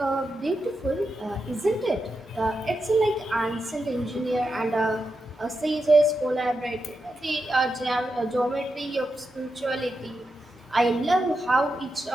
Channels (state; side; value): normal; both; correlation 0.87